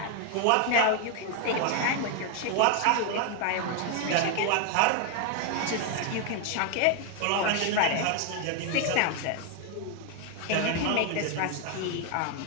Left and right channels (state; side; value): different; both; correlation 0.01